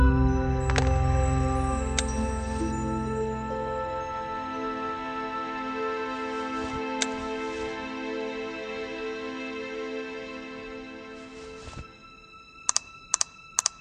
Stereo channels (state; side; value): identical; both; correlation 1.00